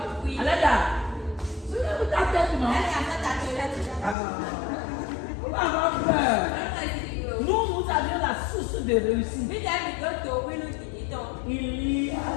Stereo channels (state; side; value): drops out; right; at 4.2 s